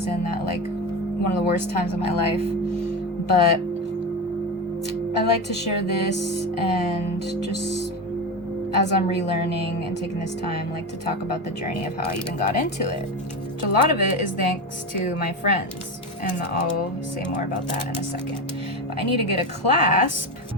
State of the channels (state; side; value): normal; both; correlation 0.20